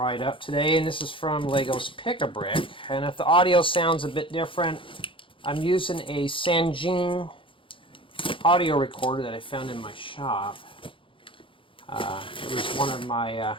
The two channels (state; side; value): late; right; 0.25 ms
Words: up today, and this is from Lego's Pick-a-Brick. And if the audio sounds a bit different, I'm using a Sanjin audio recorder that I found in my shop. It was one of my